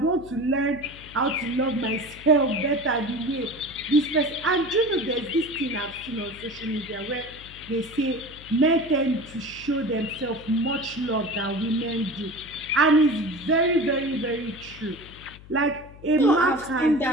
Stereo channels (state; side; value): noise; left; hum, 19 dB below the sound